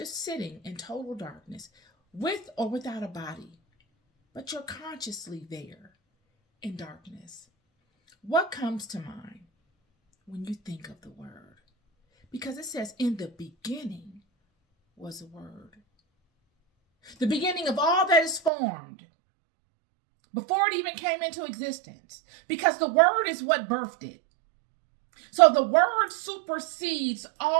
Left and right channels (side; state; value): left; drops out; at 18.5 s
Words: sitting in total darkness, with or without a body, but you're consciously there in darkness, what comes to mind when you think of the Word? Because it says, in the beginning was a Word. The beginning of all that is formed, before it even came into existence, because the Word is what birthed it. So the Word supersedes